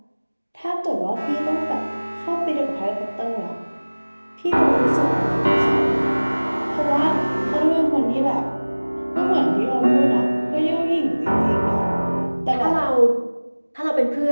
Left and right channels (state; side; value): inverted; both; correlation -1.00